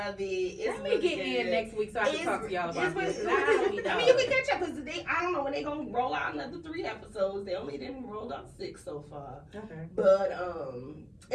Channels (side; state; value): both; identical; correlation 1.00